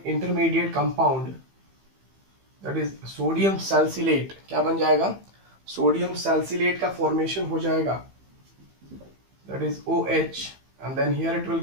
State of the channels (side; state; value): left; late; 15 ms